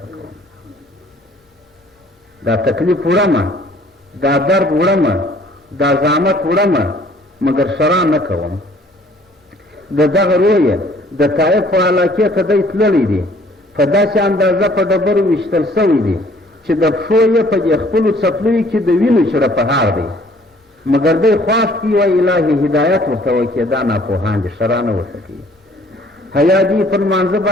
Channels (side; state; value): both; normal; correlation 0.57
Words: پکوم. دا تکلیف وړمه، دا درد وړمه، دا زحمت وړمه، مګر شرع نه کوم. د دغه رویه د طایف په علاقې ته دی تللی دی، په داسې اندازه په ډبرو ویشتل سوی دی چې د پښو یې په دې خپلو څپلیو کې د وینو چړپهار دی، مګر دی خواست کي وایي الهي هدایت ورته وکړي، دا ناپوهان دي، شرع نه ورته کوي. حیا دي پر لمانځه